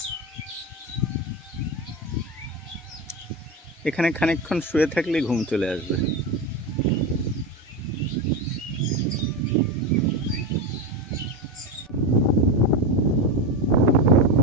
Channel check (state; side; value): normal; both; correlation 0.17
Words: এখানে খানিকক্ষণ শুয়ে থাকলেই ঘুম চলে আসবে।